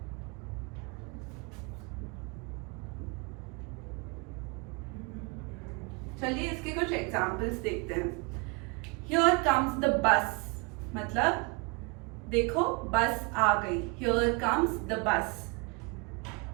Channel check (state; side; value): quieter; left; 29.3 dB